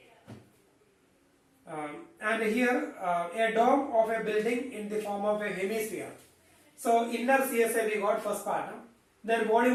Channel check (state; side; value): identical; both; correlation 1.00